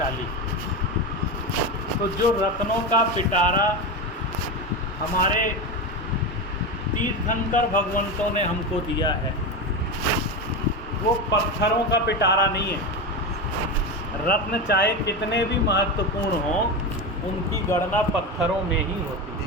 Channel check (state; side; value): normal; both; correlation 0.19